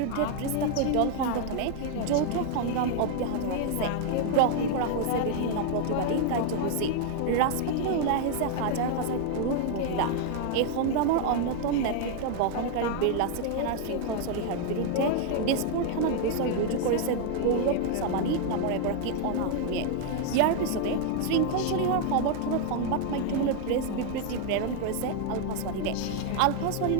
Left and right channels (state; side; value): different; both; correlation 0.00